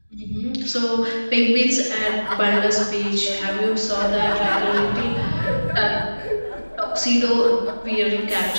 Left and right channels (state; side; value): inverted; both; correlation -1.00